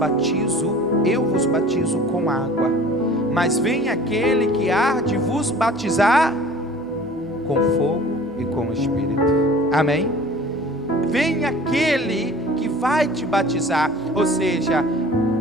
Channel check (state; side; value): normal; both; correlation 0.46